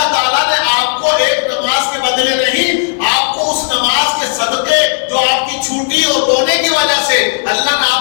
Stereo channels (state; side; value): silent; right; digital silence